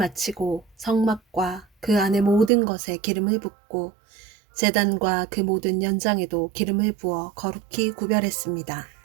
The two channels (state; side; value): drops out; left; at 2.5 s